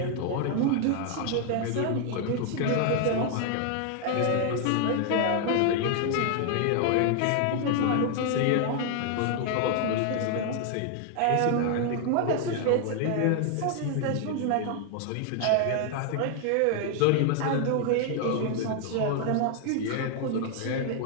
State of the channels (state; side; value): different; both; correlation 0.00